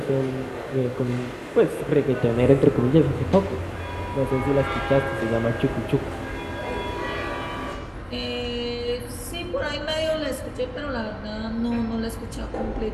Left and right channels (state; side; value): identical; both; correlation 1.00